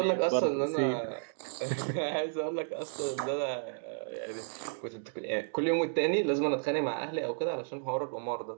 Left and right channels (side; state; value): left; silent; digital silence